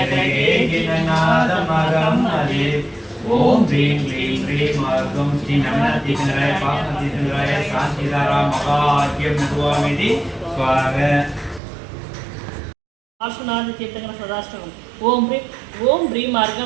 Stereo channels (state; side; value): drops out; left; at 11.6 s